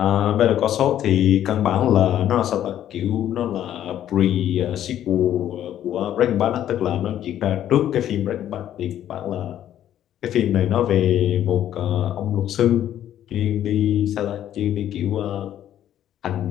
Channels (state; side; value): quieter; right; 11.3 dB